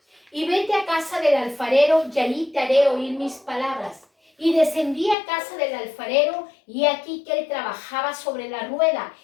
y vete a casa del alfarero, y allí te haré oír mis palabras. Y descendí a casa del alfarero, y aquí que él trabajaba sobre la rueda,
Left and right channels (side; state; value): right; drops out; at 5.2 s